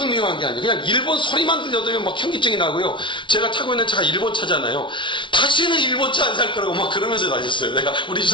미워한 게 아니에요. 그냥 일본 소리만 들려도 막 현기증이 나고요. 제가 타고 있는 차가 일본 차잖아요. 다시는 일본 차 안 살 거라고 막 그러면서 다녔어요. 내가 우리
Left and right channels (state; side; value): late; right; 0.24 ms